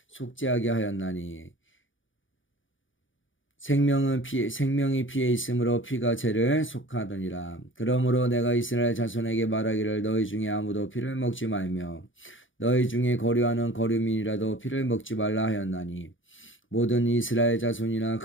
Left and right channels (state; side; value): late; right; 0.57 ms